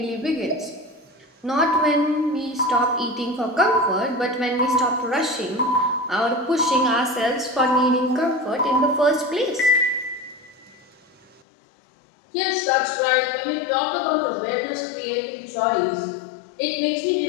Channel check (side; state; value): right; drops out; at 11.4 s